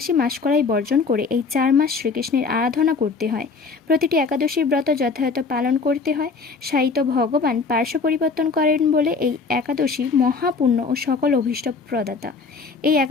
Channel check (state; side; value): quieter; right; 4.6 dB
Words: মাসকলাই বর্জন করে এই 4 মাস শ্রীকৃষ্ণের আরাধনা করতে হয়। প্রতিটি একাদশীর ব্রত যথাযথ পালন করতে হয়। সাহিত্য ভগবান পার্শ্ব পরিবর্তন করেন বলে এই একাদশী মহাপুণ্য ও সকল অভীষ্ট প্রদাতা। এই